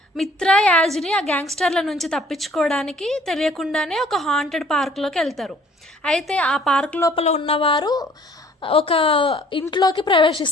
మిత్ర, యాజిని ఆ గ్యాంగ్స్టర్ల నుంచి తప్పించుకోవడానికి తెలియకుండానే ఒక హాంటెడ్ పార్క్లోకి వెళ్తారు. అయితే ఆ పార్క్ లోపల ఉన్నవారు ఒక ఇంట్లోకి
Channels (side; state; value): both; normal; correlation 0.56